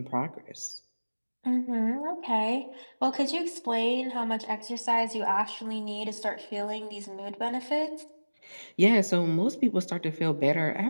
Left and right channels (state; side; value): inverted; both; correlation -1.00